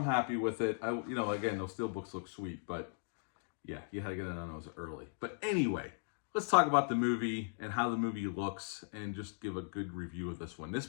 with it. Again, those steelbooks look sweet, but yeah, you had to get it on those early. But anyway, let's talk about the movie and how the movie looks and just give a good review of this one.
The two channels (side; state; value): right; silent; digital silence